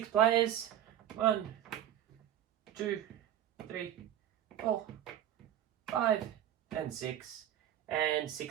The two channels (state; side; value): quieter; left; 11.3 dB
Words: players. 1, 2, 3, 4, 5, and 6, and